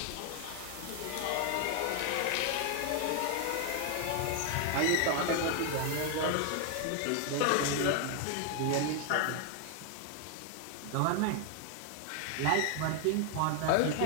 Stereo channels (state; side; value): different; both; correlation 0.00